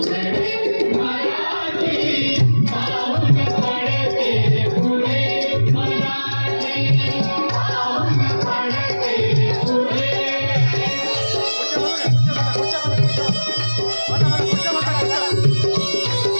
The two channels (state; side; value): inverted; both; correlation -1.00